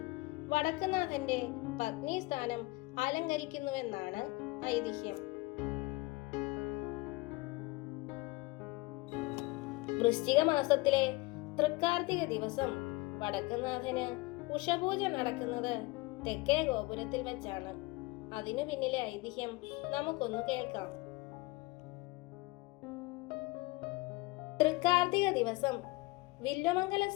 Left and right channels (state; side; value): quieter; right; 22.5 dB